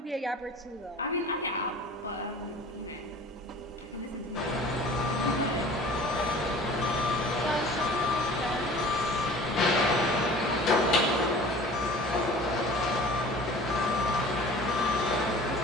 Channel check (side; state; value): both; normal; correlation 0.44